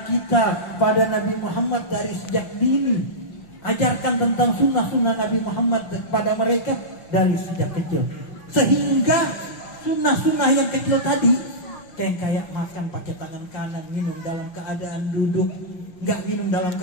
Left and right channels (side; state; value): right; late; 5.6 ms